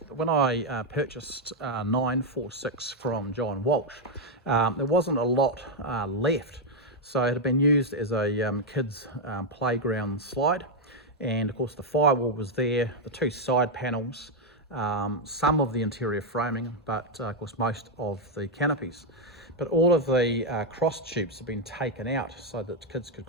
when I purchased 946 from John Walsh, there wasn't a lot left. So it had been used as a kids playground slide. And of course the firewall was there, the two side panels, some of the interior framing, but of course most of the canopies. But all of the cross tubes have been taken out so that kids could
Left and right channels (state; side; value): normal; both; correlation 0.00